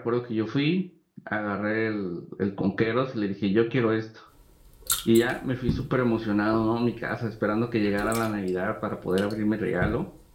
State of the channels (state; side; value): identical; both; correlation 1.00